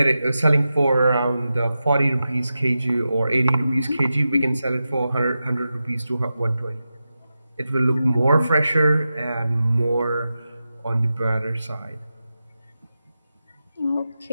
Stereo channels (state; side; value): inverted; both; correlation -0.91